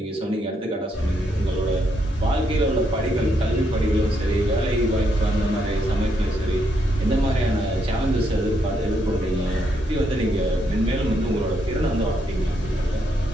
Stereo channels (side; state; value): both; normal; correlation 0.77